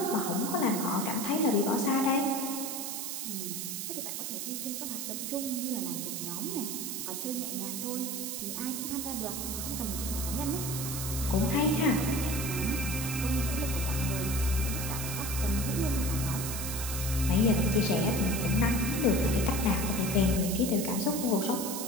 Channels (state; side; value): noise; right; hiss, 4 dB below the sound